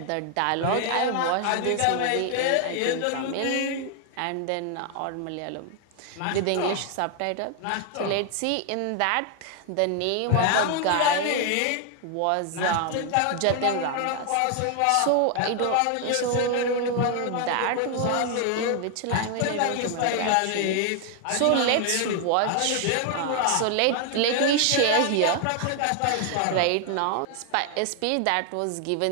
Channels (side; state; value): both; different; correlation 0.00